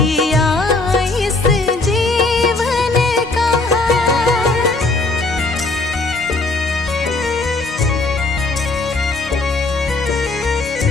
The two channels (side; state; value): right; quieter; 3.3 dB